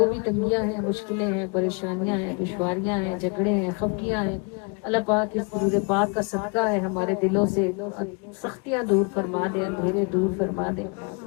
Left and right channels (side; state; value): right; quieter; 33.4 dB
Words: بھی تنگیاں ہیں، مشکلیں ہیں، پریشانیاں ہیں، دشواریاں ہیں، جھگڑے ہیں، خفگیاں ہیں، اللہ پاک اس درود پاک کا صدقہ ہے ہمارے دلوں سے سختیاں دور فرما دے، اندھیرے دور فرما دے